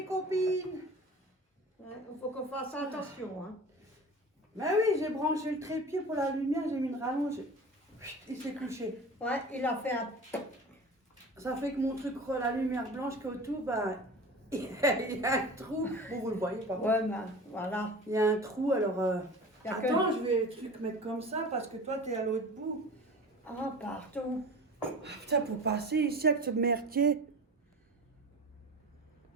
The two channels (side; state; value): both; normal; correlation 0.36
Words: copines. Il faut qu'on fasse attention. Hein. Ben oui, j'ai branché le trépied pour la lumière, j'ai mis une rallonge. Il s'est couché. Ouais, il a fait un... Ça fait que mon truc, la lumière blanche qui est autour, ben, il y a un trou. Bon, vous le voyez pas. Ouais, ben, voilà. Il y a un trou, alors... Y a Attends, je vais truc mettre comme ça parce que toi, t'es à l'autre bout. Ah, partout. Ah, putain, pour passer ici avec ce merdier.